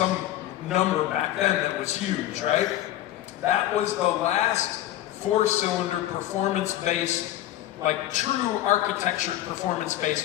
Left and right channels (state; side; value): quieter; right; 13.7 dB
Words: number back then that was huge, right? That was the last four-cylinder performance-based, like true architecture